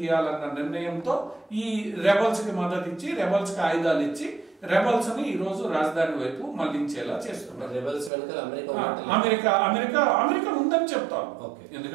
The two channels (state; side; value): drops out; left; at 8.1 s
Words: నిర్ణయంతో ఈ రెబల్స్ కి మద్దతు ఇచ్చి, రెబల్స్ కి ఆయుధాలు ఇచ్చి రెబల్స్ ని ఈ రోజు రాజధాని వైపు మళ్లించేలా చేస్తున్నారు. అమెరికా ఉందని చెప్తాం.